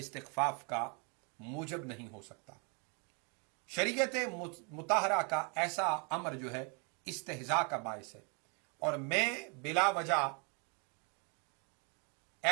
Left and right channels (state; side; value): quieter; left; 35.3 dB